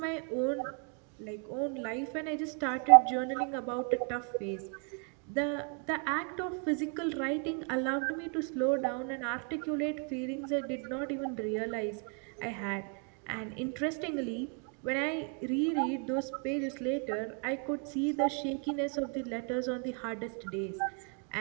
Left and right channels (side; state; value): left; quieter; 38.9 dB